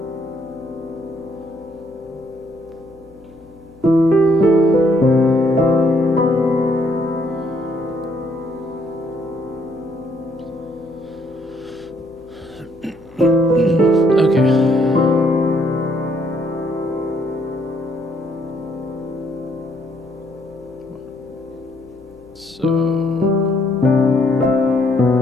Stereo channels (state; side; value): noise; left; hum, 26 dB below the sound